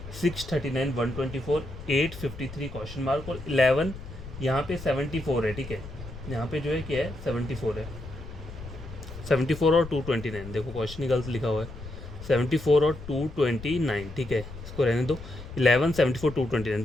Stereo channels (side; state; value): left; noise; rumble, 13 dB below the sound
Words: 639 124 853 क्वेश्चन मार्क, और 11 यहाँ पे 74 है, ठीक है। यहाँ पे जो है क्या है 74 है, 74 और 229, देखो क्वेश्चन ही गलत लिखा हुआ है, 74 और 229, ठीक है, इसको रहने दो। 11 74